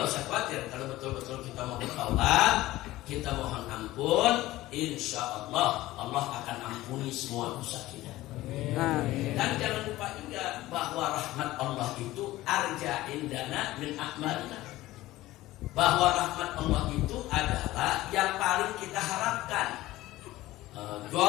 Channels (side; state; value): right; quieter; 17.0 dB